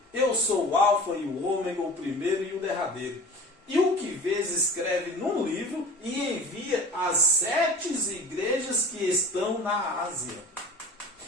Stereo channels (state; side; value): normal; both; correlation 0.40